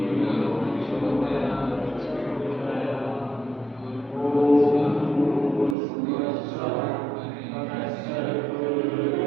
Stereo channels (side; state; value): left; drops out; at 5.8 s